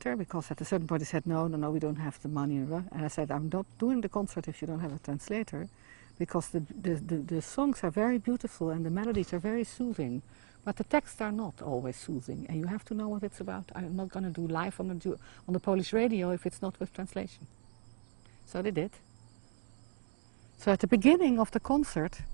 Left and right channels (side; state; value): left; silent; 54 dB below the other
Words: because at a certain point they said, no, we don't have the money. And I said, I'm not doing the concert if you don't have a translator, because the songs are very beautiful and the melodies are very soothing, but the texts are not always soothing, and you have to know what it's about. I'm not going to do live on the Polish radio if it's not with translation. So they did. So at the beginning of the concert,